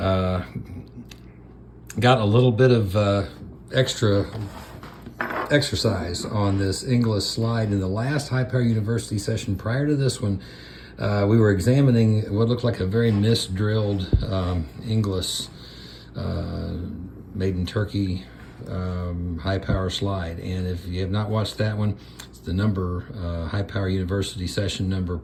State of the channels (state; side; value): identical; both; correlation 1.00